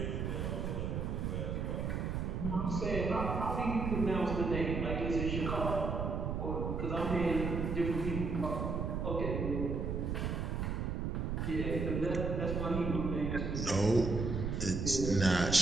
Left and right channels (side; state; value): right; noise; rumble, 1 dB below the sound